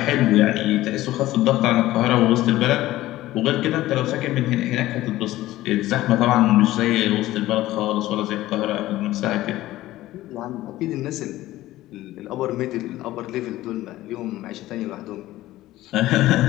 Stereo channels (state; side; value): quieter; right; 16.0 dB